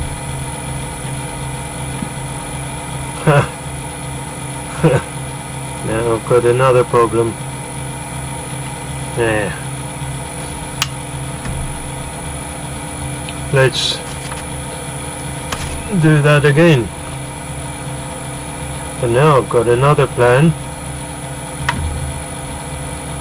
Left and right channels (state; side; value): identical; both; correlation 1.00